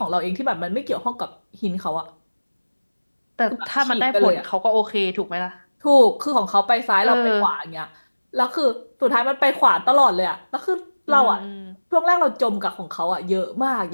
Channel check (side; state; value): both; inverted; correlation -1.00